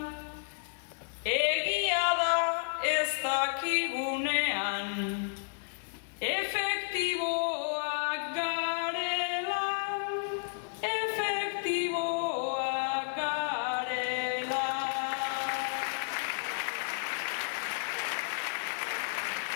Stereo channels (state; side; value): silent; right; digital silence